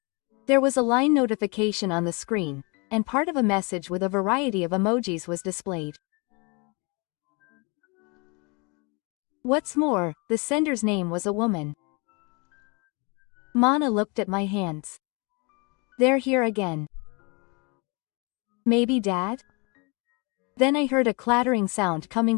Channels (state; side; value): quieter; right; 30.9 dB